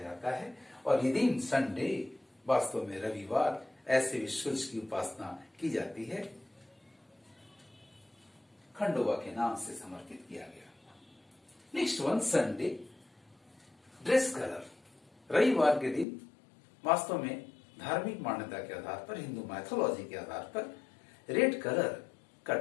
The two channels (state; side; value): drops out; right; at 16.1 s